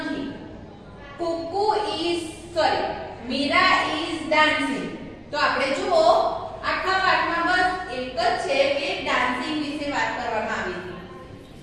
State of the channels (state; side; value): identical; both; correlation 1.00